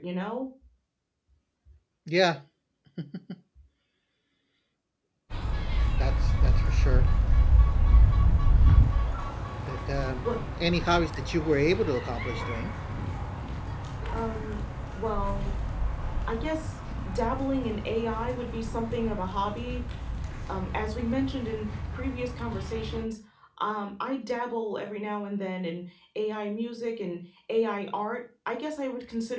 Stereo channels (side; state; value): both; identical; correlation 1.00